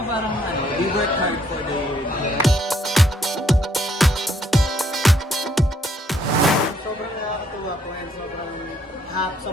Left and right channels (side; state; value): both; normal; correlation 0.68